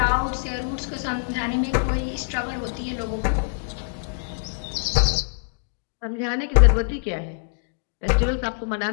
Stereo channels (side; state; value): right; silent; digital silence